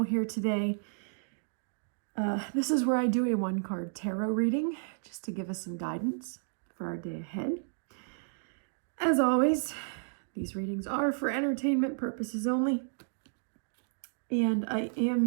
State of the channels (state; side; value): silent; left; digital silence